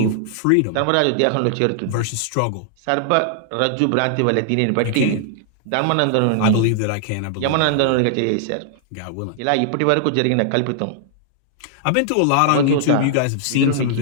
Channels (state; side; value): different; both; correlation -0.01